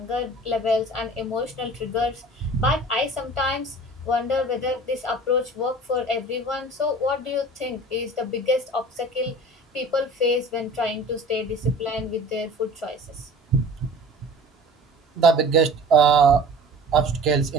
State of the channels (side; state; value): both; normal; correlation 0.42